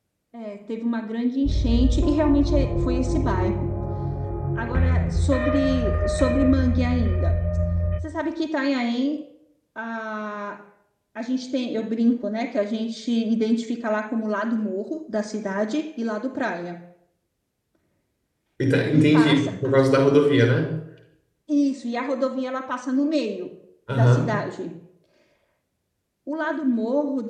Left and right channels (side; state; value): both; identical; correlation 1.00